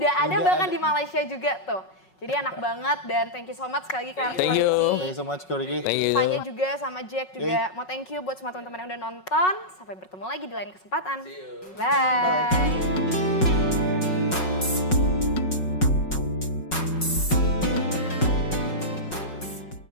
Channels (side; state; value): right; late; 5.4 ms